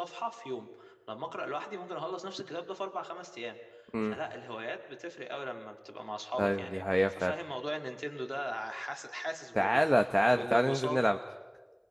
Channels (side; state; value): both; identical; correlation 1.00